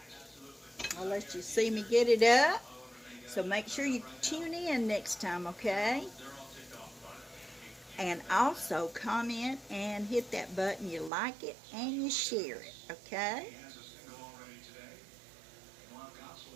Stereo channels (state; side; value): drops out; left; at 11.1 s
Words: I'll let you see me get it up. So make sure you tune in next time, okay? And also comment and hit that button you like it and you share it, okay?